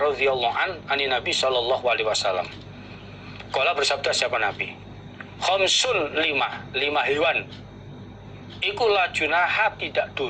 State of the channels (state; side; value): identical; both; correlation 1.00